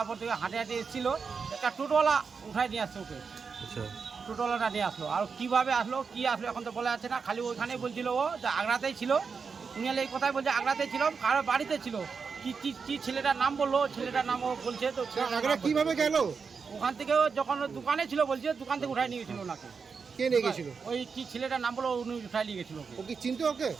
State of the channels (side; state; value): left; quieter; 5.5 dB